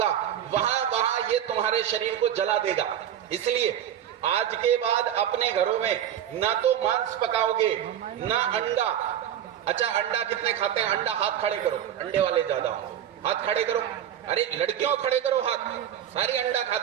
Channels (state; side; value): quieter; left; 10.3 dB